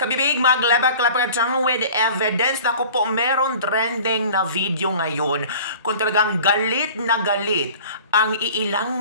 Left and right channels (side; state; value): both; inverted; correlation -0.44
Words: maglabak-labak with evidence. Naku po, meron trending na video ngayon kung talagang galit na galit ang iilang